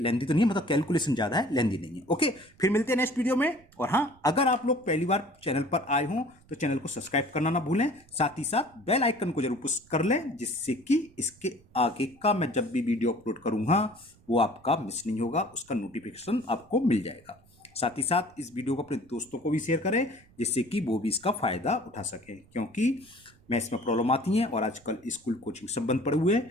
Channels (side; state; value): right; noise; rumble, 28 dB below the sound